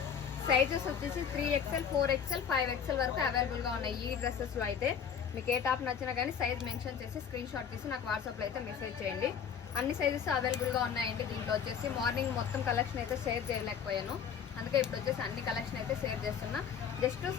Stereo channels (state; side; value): quieter; right; 7.5 dB